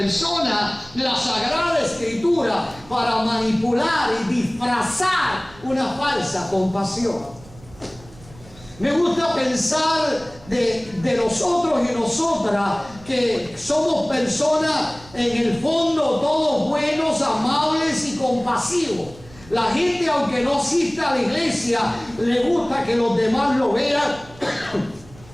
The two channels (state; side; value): noise; right; rumble, 22 dB below the sound